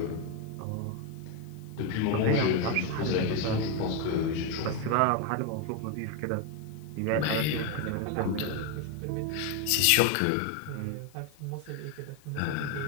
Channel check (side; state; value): both; different; correlation 0.02